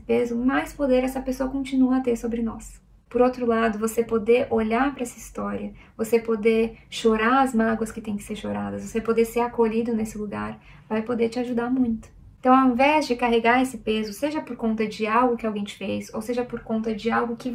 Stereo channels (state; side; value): identical; both; correlation 1.00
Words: mais poder essa pessoa continua a ter sobre nós. Por outro lado, você poder olhar para essa história, você poder chorar as mágoas que tem que ser choradas, você poder ser acolhido nesse lugar, vai poder te ajudar muito. Então, ao invés de carregar esse peso, seja por conta de algo que alguém te fez, ou seja por conta de algo que